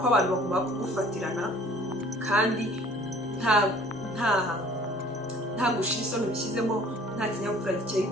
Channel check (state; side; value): normal; both; correlation 0.52